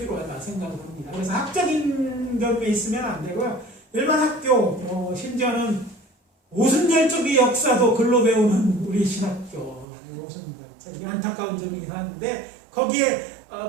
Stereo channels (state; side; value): drops out; left; at 9.9 s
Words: 생각을 합니다. 그래서 학적인 경우에 있으면 안 되고요. 일반 학교, 심지어는 오순절 쪽의 역사도 글로 배우는 우리 신학교, 오순절, 안타까운 점이긴 한데 거기에